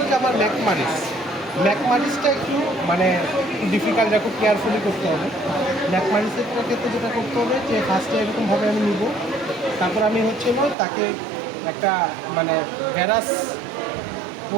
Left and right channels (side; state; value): left; drops out; at 10.8 s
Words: যে আমার ম্যাকমারিসটা একটু মানে ডিফিকাল্ট, খুব কেয়ারফুলি করতে হবে। ম্যাকমারিসের ক্ষেত্রে যেটা করতে হবে যে ফার্স্টে এরকমভাবে আমি নিব, তারপর আমি হচ্ছে হলো তাকে একটা মানে ভ্যারাস